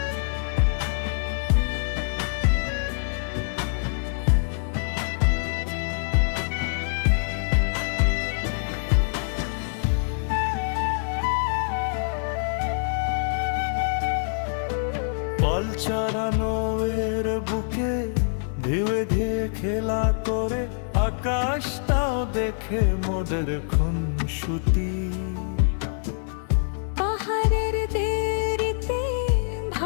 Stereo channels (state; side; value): silent; right; 56 dB below the other